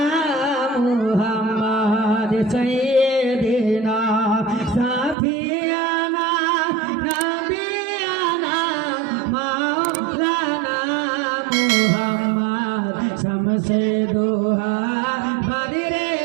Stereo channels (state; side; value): drops out; left; at 5.2 s